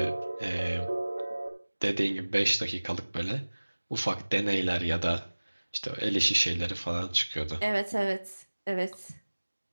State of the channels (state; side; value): inverted; both; correlation -1.00